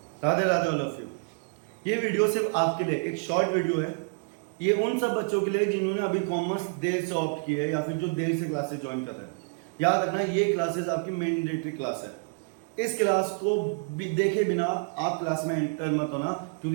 Radhe Radhe all of you. ये वीडियो सिर्फ आपके लिए एक शॉर्ट वीडियो है। ये उन सब बच्चों के लिए जिन्होंने अभी कॉमर्स देर से ऑप्ट की है या फिर जो देर से क्लासेस ज्वाइन कर रहे हैं। याद रखना, ये क्लासेस आपकी मैंडेटरी क्लास है। इस क्लास को देखे बिना आप क्लास में एंटर मत होना,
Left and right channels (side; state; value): left; silent; digital silence